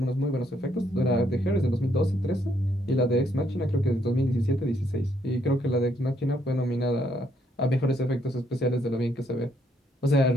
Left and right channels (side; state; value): both; normal; correlation 0.72